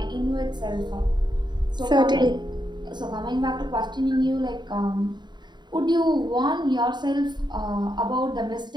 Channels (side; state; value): left; late; 0.21 ms